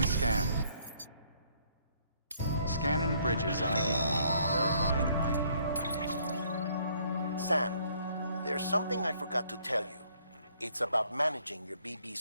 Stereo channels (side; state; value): both; inverted; correlation -0.64